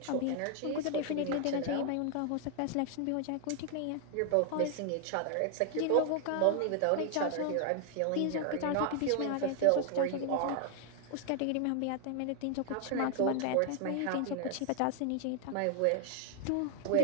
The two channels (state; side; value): different; both; correlation 0.00